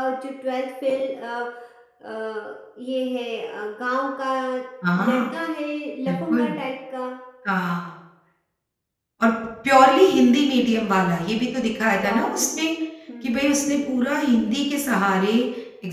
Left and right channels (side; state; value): both; identical; correlation 1.00